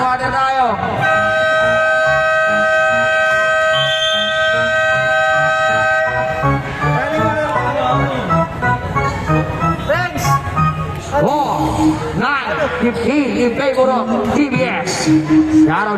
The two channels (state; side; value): identical; both; correlation 1.00